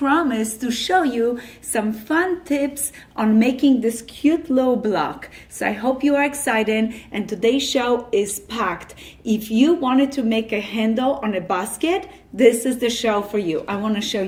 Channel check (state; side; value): identical; both; correlation 1.00